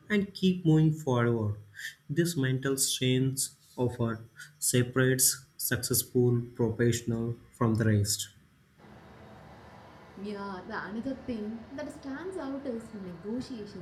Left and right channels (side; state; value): both; identical; correlation 1.00